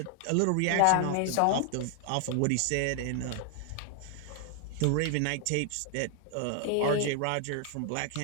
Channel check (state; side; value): different; both; correlation 0.00